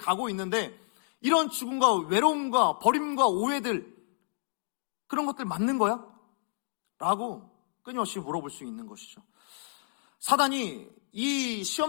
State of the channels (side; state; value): right; silent; digital silence